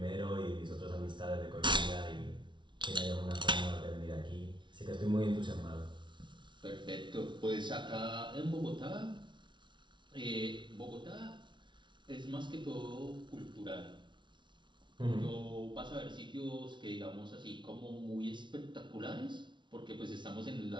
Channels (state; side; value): late; left; 0.23 ms